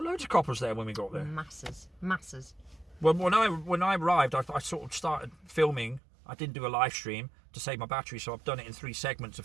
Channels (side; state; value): left; drops out; at 6.0 s